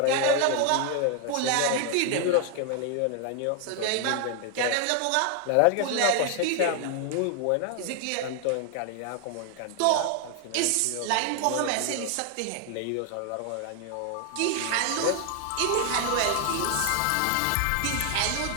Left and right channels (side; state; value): both; different; correlation 0.00